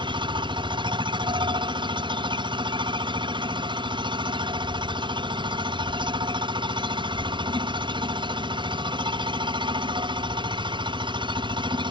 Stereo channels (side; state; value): left; late; 0.23 ms